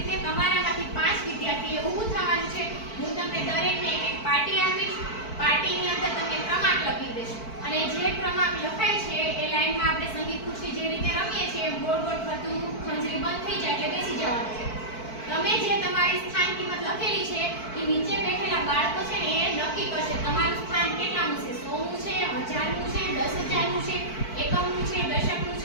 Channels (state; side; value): late; right; 4.5 ms